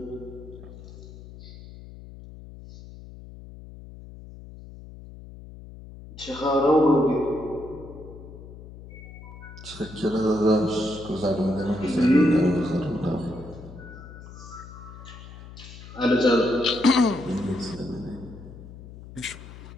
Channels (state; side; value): noise; left; hum, 16 dB below the sound